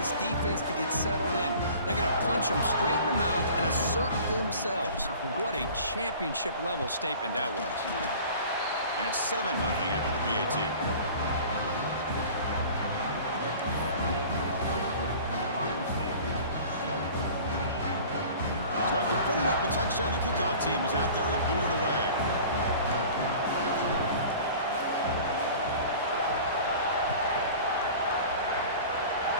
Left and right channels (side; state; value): both; inverted; correlation -0.43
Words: defense to get settled in. They're going to punch them straight in the mouth and assert themselves. What a championship-level statement that was. And it's 7-0 after the BAT. So after putting up the touchdown, the kickoff team is out there to boot it away.